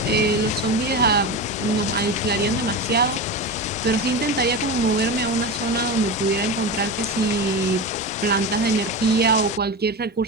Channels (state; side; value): normal; both; correlation 0.22